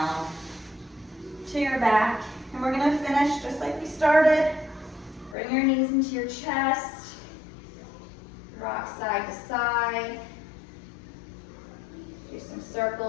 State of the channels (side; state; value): right; drops out; at 5.4 s